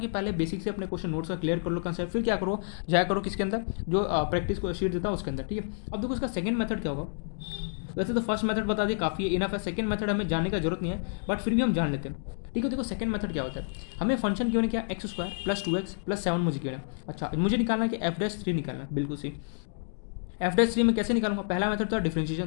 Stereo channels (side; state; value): right; silent; digital silence